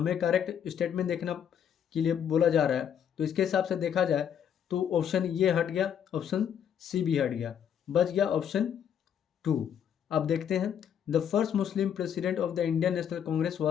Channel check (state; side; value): quieter; right; 8.7 dB